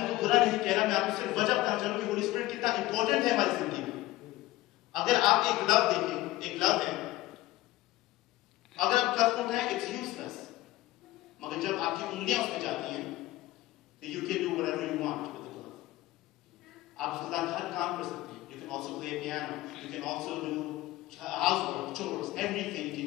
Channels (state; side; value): quieter; right; 17.5 dB